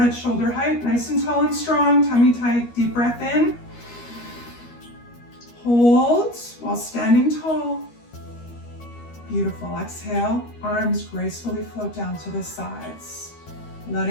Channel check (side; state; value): right; late; 13 ms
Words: shoulder height, nice and tall and strong, tummy tight, deep breath in. Hold while standing tall. Beautiful. Exhale, arms gracefully float down to the sides.